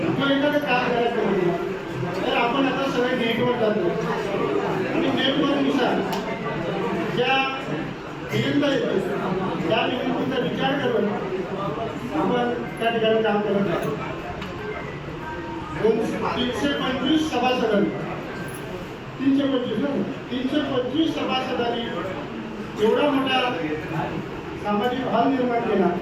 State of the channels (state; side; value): identical; both; correlation 1.00